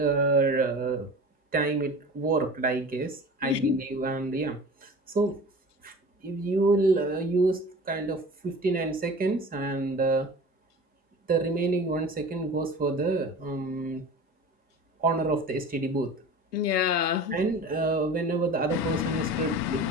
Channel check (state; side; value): normal; both; correlation 0.37